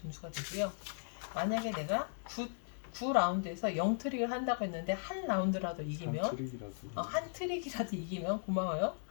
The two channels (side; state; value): right; silent; digital silence